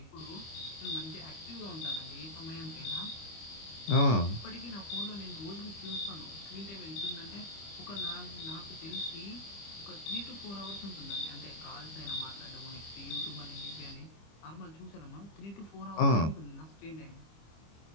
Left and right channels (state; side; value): late; right; 25 ms